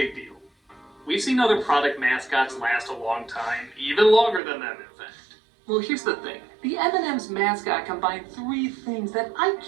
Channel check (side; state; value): left; drops out; at 4.4 s